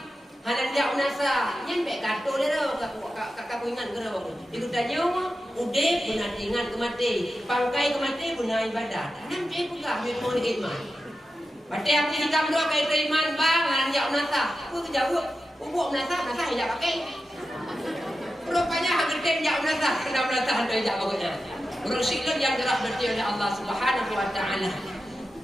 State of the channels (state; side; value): normal; both; correlation 0.91